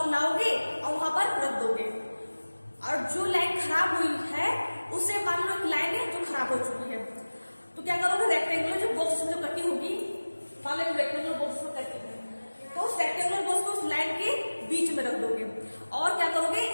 और वहां पर रख दोगे। और जो लाइन खराब हुई है उसे मान लो एक लाइन है जो खराब हो चुकी है, तो क्या करोगे, रेक्टेंगुलर जो बॉक्स में जो कटी होगी, मान लो रेक्टेंगुलर बॉक्स में कटी है, तो उस रेक्टेंगुलर बॉक्स को उस लाइन के बीच में रख दोगे और क्या करोगे,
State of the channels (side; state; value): both; inverted; correlation -1.00